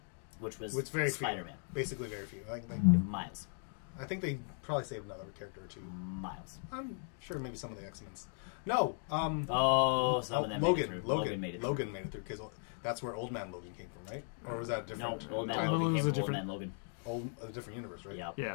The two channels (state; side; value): silent; right; 53 dB below the other